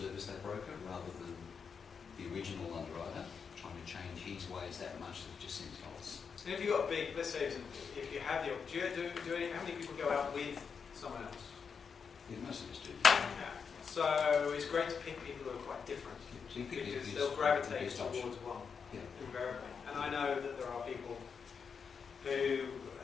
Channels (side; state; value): right; quieter; 6.1 dB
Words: that broker rather than the original underwriter trying to change his ways that much that it just seems false. And if you've got big, let's say, if you have the opportunity, how many people go out with someone else? Yeah, most of us do. Yeah. So it's great to pick people who are quite different, So you pick because the they'll gravitate best option. towards one, Yeah. invariably. And I know that there are people who